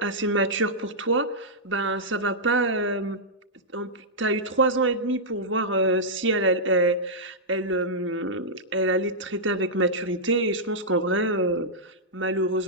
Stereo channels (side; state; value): both; normal; correlation -0.10